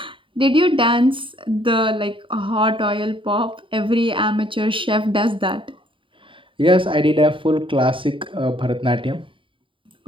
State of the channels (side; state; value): left; late; 0.25 ms